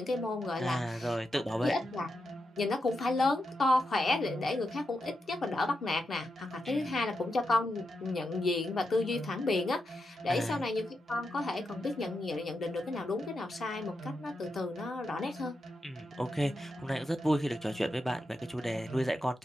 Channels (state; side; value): normal; both; correlation 0.86